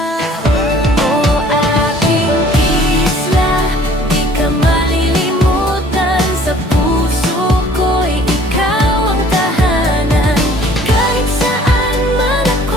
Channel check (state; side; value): normal; both; correlation 0.54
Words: Oh, aking isla, di ka malilimutan, sa puso ko'y ikaw ang tahanan. Kahit saan man